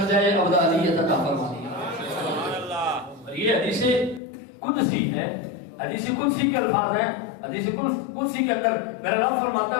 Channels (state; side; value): drops out; right; at 4.2 s